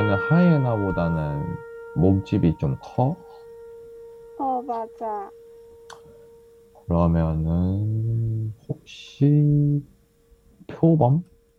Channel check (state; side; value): identical; both; correlation 1.00